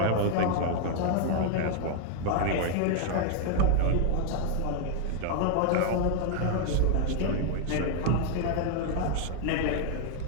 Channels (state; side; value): different; both; correlation 0.00